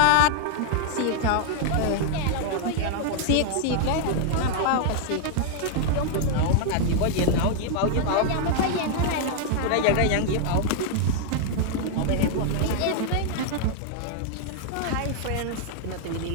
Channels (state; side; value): different; both; correlation 0.00